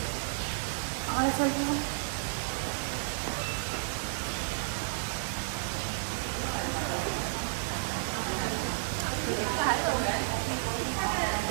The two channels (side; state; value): left; silent; 56 dB below the other